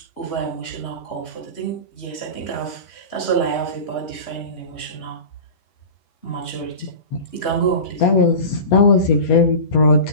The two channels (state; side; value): late; right; 8.5 ms